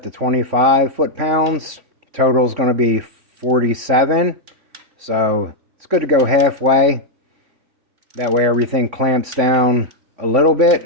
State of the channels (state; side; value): late; left; 3.6 ms